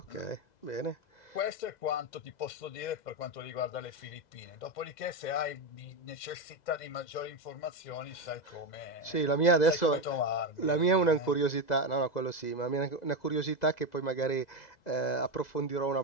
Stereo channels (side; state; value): right; late; 2.0 ms